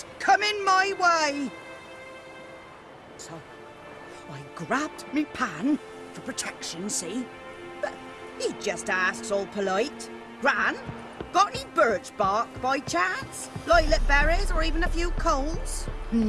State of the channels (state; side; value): identical; both; correlation 1.00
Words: coming my way. So, I grabbed me pan, for protection, see? But he just asks all polite, Gran, got any birch bark by chance? Lilac berries or even a few coals?